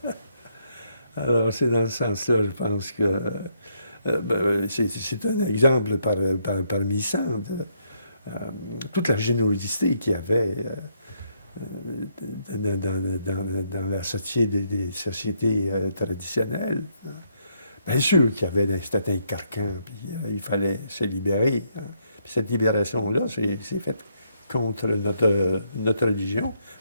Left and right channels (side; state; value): both; inverted; correlation -0.74